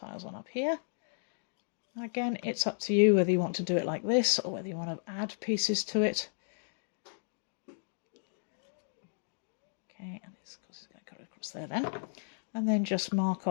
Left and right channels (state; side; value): silent; right; digital silence